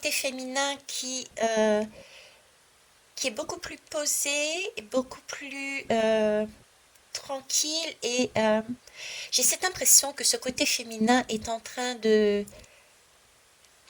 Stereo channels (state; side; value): identical; both; correlation 1.00